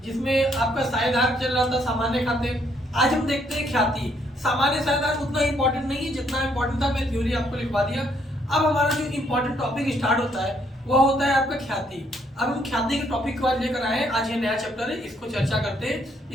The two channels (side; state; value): both; normal; correlation 0.70